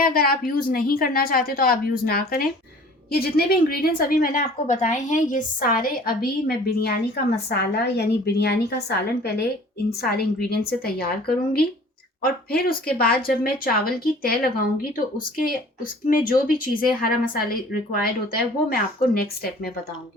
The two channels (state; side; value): normal; both; correlation 0.49